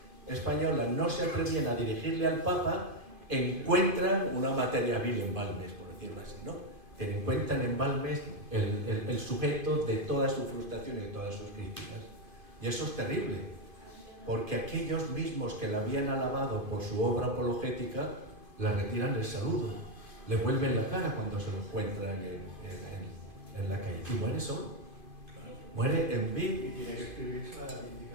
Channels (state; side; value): late; left; 2.5 ms